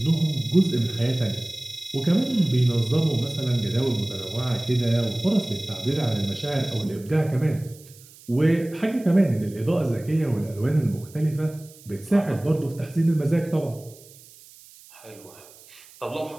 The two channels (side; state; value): right; noise; hiss, 23 dB below the sound